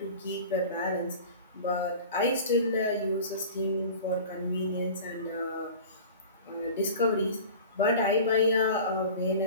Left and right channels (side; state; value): both; inverted; correlation -0.38